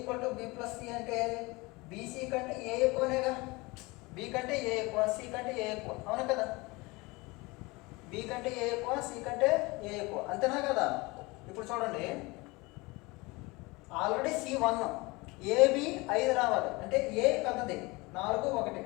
to B plus C అంటే బీసీ కంటే ఏ ఎక్కువనేగా. బి కంటే ఏ ఎక్కువ, సి కంటే ఏ ఎక్కువ, అవునా కదా? బి కంటే ఏ ఎక్కువ, సి కంటే ఏ ఎక్కువ, అంతేనా కదా? ఇప్పుడు చూడండి, ఆల్రెడీ C1, ఏబి 5 రావాలి అంటే ఏ పెద్దది 4 1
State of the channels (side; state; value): right; quieter; 24.1 dB